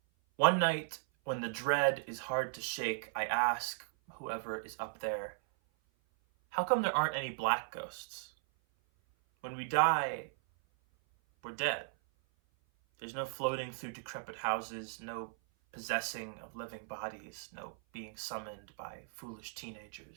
One night, when the dread is hard to shake, I ask whoever is up there, how come there aren't any black ghosts? When we die, we're dead. There's no floating through decrepit houses, no possessing of living bodies, no being summoned by foolish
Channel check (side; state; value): left; silent; 53 dB below the other